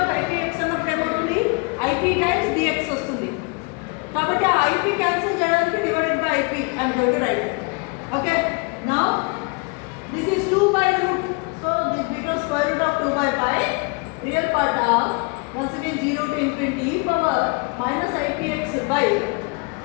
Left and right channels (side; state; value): right; quieter; 31.3 dB